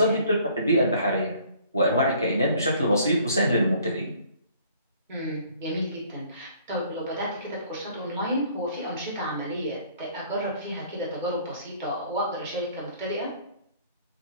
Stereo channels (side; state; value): both; inverted; correlation -0.57